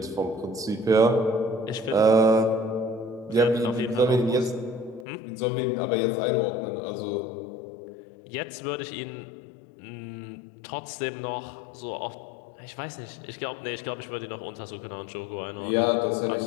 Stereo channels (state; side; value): drops out; right; at 5.1 s